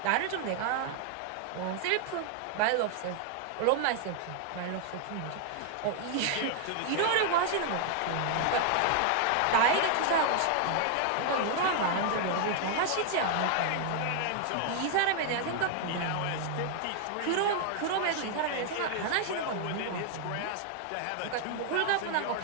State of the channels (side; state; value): both; different; correlation 0.00